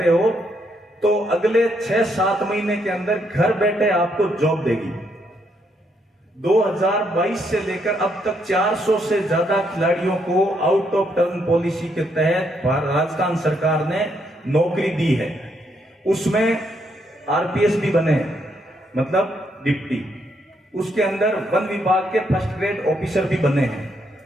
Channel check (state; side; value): normal; both; correlation 0.75